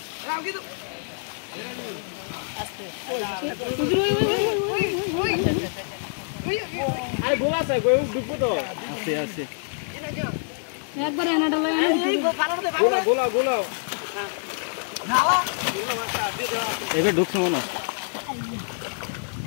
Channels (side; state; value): right; silent; digital silence